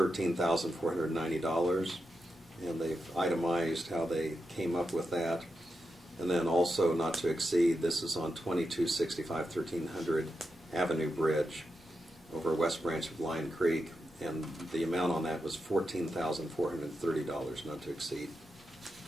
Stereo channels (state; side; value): normal; both; correlation 0.87